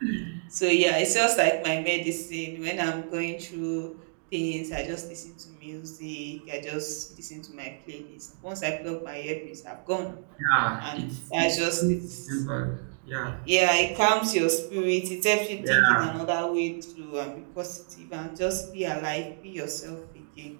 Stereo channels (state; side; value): silent; left; digital silence